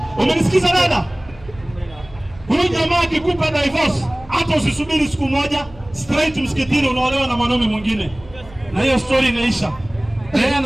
Umenisikiza dada? Huyu jamaa akikupa divorce, hata usisubiri siku moja, straight msikitini unaolewa na mwanaume mwingine. Na hiyo story inaisha. Yeye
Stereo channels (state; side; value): noise; right; hum, 21 dB below the sound